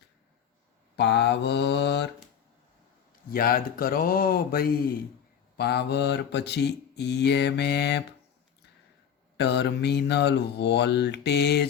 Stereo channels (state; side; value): quieter; right; 8.3 dB